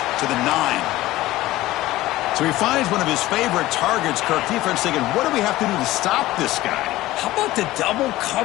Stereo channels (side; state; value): right; quieter; 16.9 dB